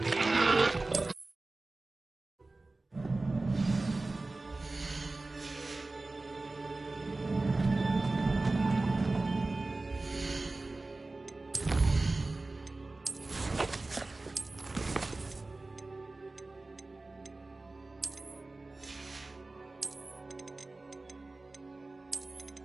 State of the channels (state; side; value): quieter; left; 3.2 dB